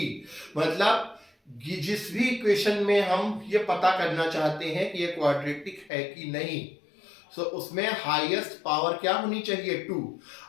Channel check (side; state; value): right; drops out; at 5.9 s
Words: मतलब जिस भी इक्वेशन में हम ये पता करना चाहते हैं कि ये क्वाड्रेटिक है कि नहीं, सो उसमें हाईएस्ट पावर क्या होनी चाहिए 2।